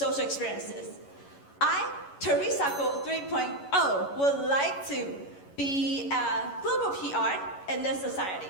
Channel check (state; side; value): late; right; 11 ms